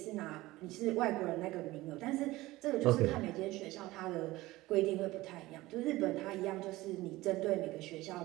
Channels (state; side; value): quieter; left; 18.6 dB